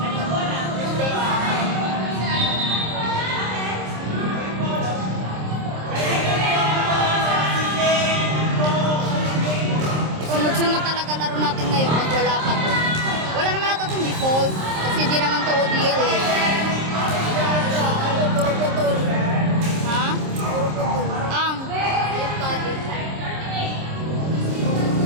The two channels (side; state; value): left; late; 26 ms